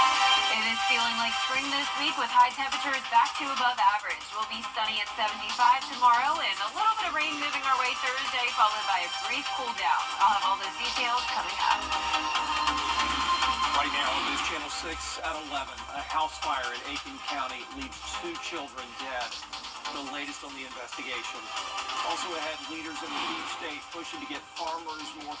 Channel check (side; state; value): both; identical; correlation 1.00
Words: is feeling like spring this week with high temperatures back to above average. We'll be sunny at 75 tomorrow and a little bit of rain moving our way Thursday, followed by a brief cool down. I'll have all those details coming up. Right now on News Channel 6 at 11, a house fire in Aiken County leaves 2 children dead. The latest on the investigation. Also ahead, leaders in the deep state pushing to get farmers more